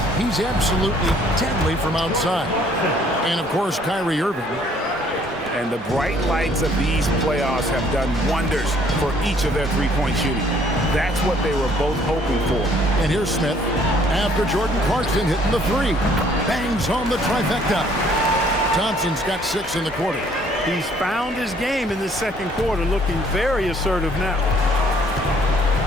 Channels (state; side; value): normal; both; correlation 0.61